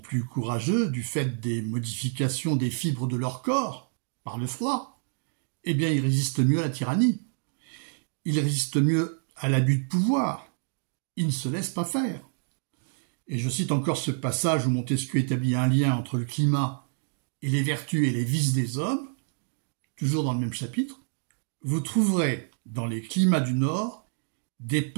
courageux du fait des modifications des fibres de leur corps par le froid, eh bien ils résistent mieux à la tyrannie, ils résistent mieux à l'abus de pouvoir, ils ne se laissent pas faire. Et je cite encore ce passage où Montesquieu établit un lien entre le climat et les vertus et les vices des hommes, toujours dans le même chapitre. Vous trouverez dans les climats du Nord des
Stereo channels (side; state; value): left; silent; digital silence